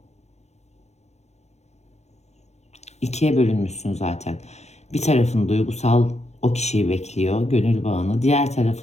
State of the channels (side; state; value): right; late; 0.32 ms